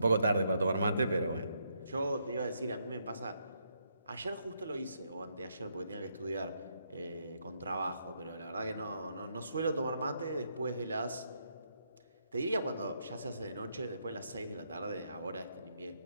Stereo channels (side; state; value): both; inverted; correlation -0.77